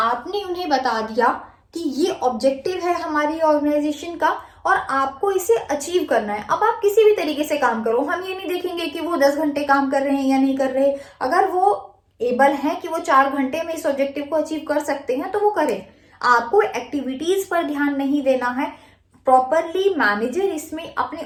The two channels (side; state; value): both; identical; correlation 1.00